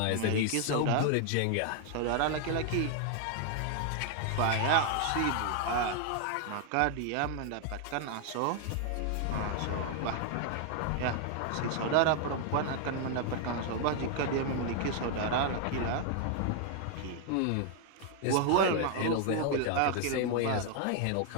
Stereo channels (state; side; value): different; both; correlation 0.00